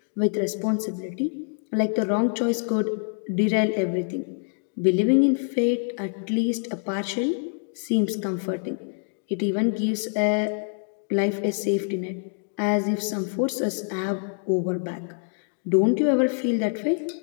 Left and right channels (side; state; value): right; silent; 61 dB below the other